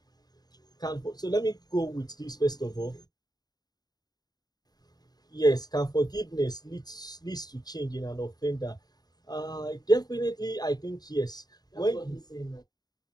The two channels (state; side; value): late; right; 0.19 ms